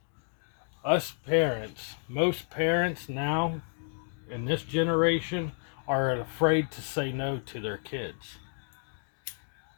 Us parents, most parents now in this generation are afraid to say no to their kids.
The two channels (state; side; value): silent; right; 57 dB below the other